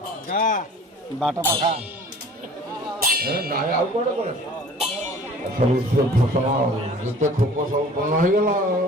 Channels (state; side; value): normal; both; correlation 0.47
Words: ବାଟ ପାଖା ନାଇଁ ଆଉ କୁଆଡେ କୁଆଡେ ସବୁ ଫସଲ ଯେତେ ଖୋପ ସବୁ ପୂର୍ଣ୍ଣ ହେଇଗଲା